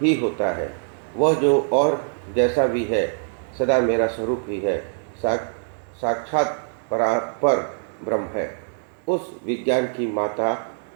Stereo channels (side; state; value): left; silent; digital silence